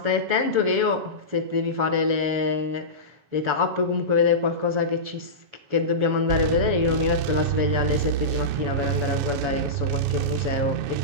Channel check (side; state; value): left; late; 7.9 ms